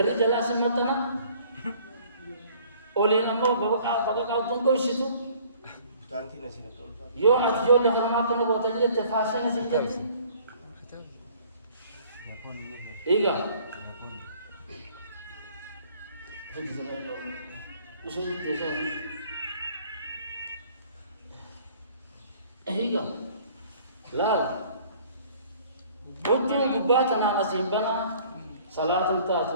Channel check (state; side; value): inverted; both; correlation -0.55